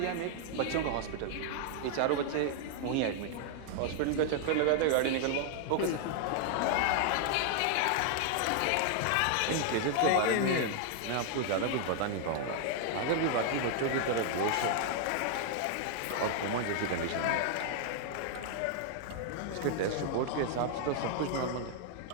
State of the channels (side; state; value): both; different; correlation 0.00